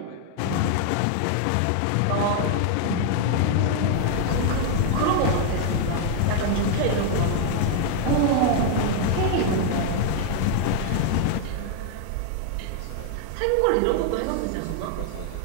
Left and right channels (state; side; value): different; both; correlation 0.00